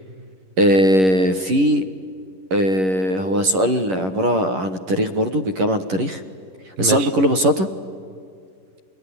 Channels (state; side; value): late; left; 11 ms